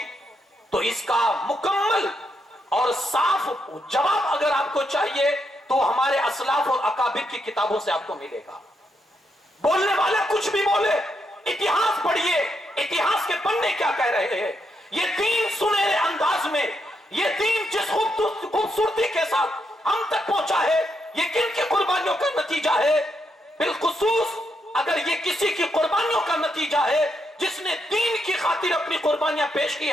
تو اس کا مکمل اور صاف جواب اگر آپ کو چاہیے تو ہمارے اسلاف اور اکابر کی کتابوں سے آپ کو ملے گا. بولنے والا کچھ بھی بولے اتہاس پڑھیے اتہاس کے پڑھنے کیا کہہ رہے ہیں. یہ دین سنہرے انداز میں یہ دین جس خوبصورتی کے ساتھ ہم تک پہنچا ہے یہ کن کی قربانیوں کا نتیجہ ہے. بالخصوص اگر یہ کسی کی قربانیوں کا نتیجہ ہے جس نے دین کی خاطر اپنی قربانیاں پیش کی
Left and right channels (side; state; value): both; normal; correlation 0.80